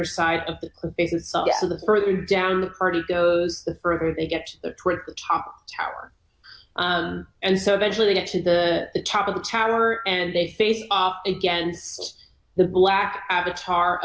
of the cliff face itself. Yeah. So the further down the party goes, the further they get to towards the top of the tower. And so eventually they get to the top of the tower, and they face off against the black avatar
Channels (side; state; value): both; identical; correlation 1.00